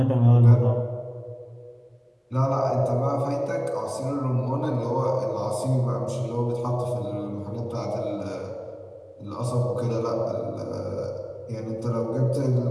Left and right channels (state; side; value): identical; both; correlation 1.00